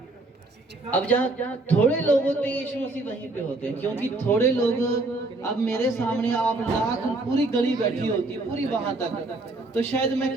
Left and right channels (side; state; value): left; quieter; 3.0 dB